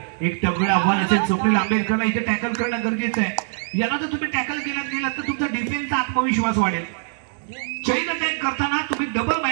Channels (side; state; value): left; silent; 63 dB below the other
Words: एक तगडं आव्हान असेल. स्वप्नील आंबेडकरला इथे टॅकल करणं गरजेचं आहे. याला जर तुम्ही टॅकल गेलात तर तुमचा डिफेन्सचा आत्मविश्वास वाढेल. चैन अटॅक करताना तुम्ही डबल